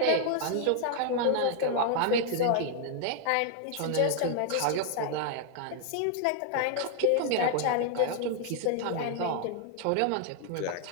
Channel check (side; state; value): both; different; correlation 0.00